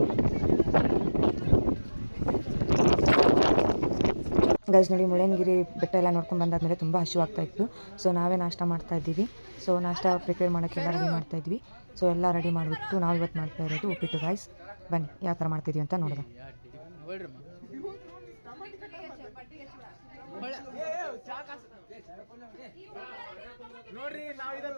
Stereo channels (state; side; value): inverted; both; correlation -1.00